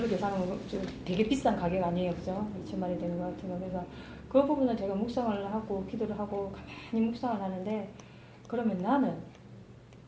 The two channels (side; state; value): both; identical; correlation 1.00